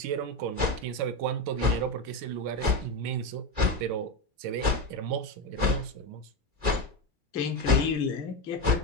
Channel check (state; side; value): late; left; 2.3 ms